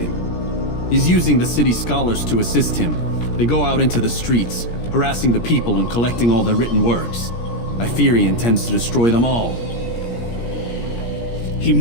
He's using the city scholars to assist him. They go out into the streets, harassing the people and collecting all their written works. I fear he intends to destroy them all. He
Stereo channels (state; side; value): late; right; 17 ms